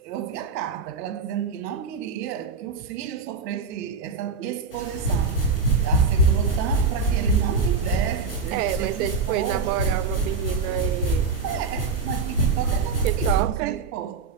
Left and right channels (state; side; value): quieter; left; 4.8 dB